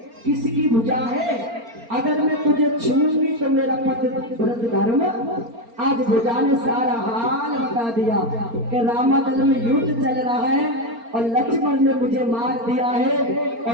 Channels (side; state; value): left; late; 4.3 ms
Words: किसकी भुजा है? अगर मैं तुझे छूंगी तो मेरा पति व्रत धर्म। आज भुजा ने सारा हाल बता दिया कि रामादल में युद्ध चल रहा है और लक्ष्मण ने मुझे मार दिया है,